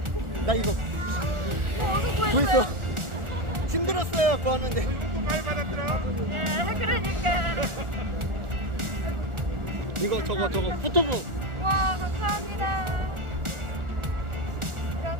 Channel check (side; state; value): left; late; 1.4 ms